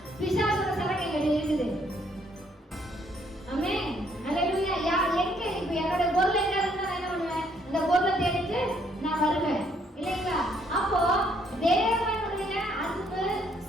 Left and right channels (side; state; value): both; normal; correlation 0.68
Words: பிசாசோட சரகைகள் இருக்குது. ஆமென். ஹல்லேலூயா. எங்க இப்ப என்னோட பொருள் எங்க இருந்தா என்ன பண்ணுவேன்? இந்த பொருளை தேடிட்டு நான் வருவேன் இல்லைங்களா? அப்போ தேவனுடைய அன்பு,